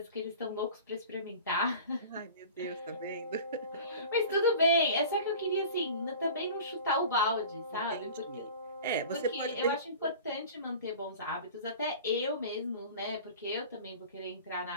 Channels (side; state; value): both; inverted; correlation -0.39